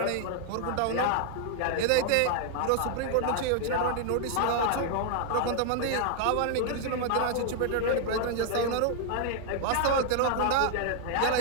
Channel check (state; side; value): different; both; correlation 0.00